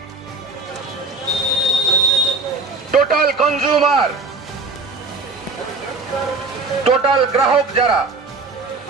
total consumer, total গ্রাহক যারা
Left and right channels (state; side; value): quieter; left; 3.7 dB